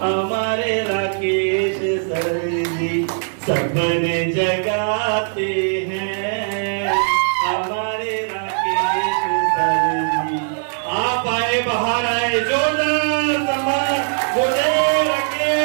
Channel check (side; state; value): left; silent; digital silence